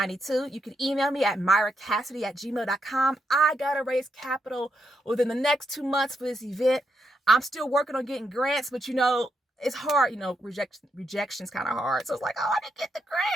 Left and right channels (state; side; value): normal; both; correlation 0.80